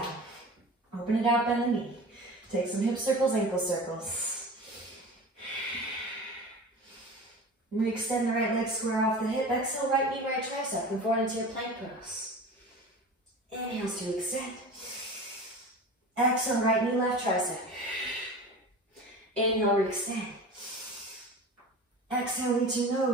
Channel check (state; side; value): normal; both; correlation 0.35